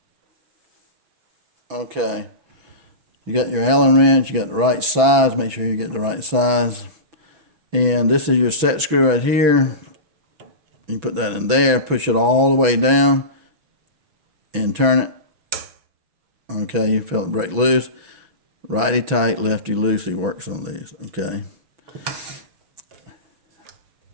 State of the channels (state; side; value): late; left; 6.1 ms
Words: Okay, you got your Allen wrench, you got the right size, make sure you get the right size. And this is your set screw right here. You put that in there, push it all the way down and turn it. Okay, you feel it break loose. Righty tight, lefty loosey works on these, okay.